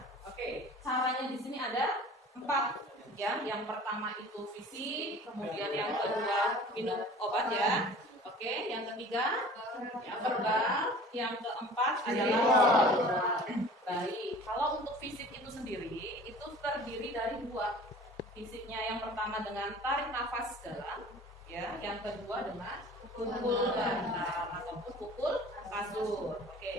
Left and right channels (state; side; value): normal; both; correlation 0.44